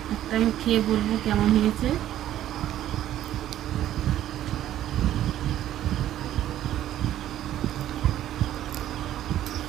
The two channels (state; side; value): quieter; left; 12.4 dB